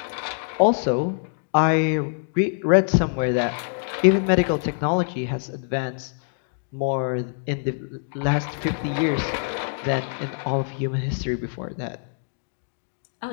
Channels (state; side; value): silent; right; digital silence